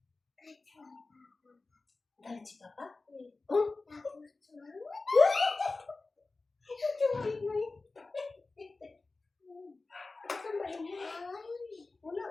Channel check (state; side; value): quieter; right; 3.5 dB